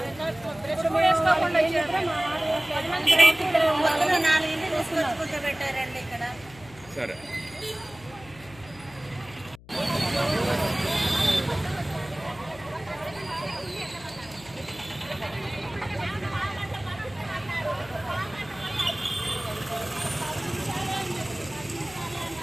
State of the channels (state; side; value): noise; left; hum, 21 dB below the sound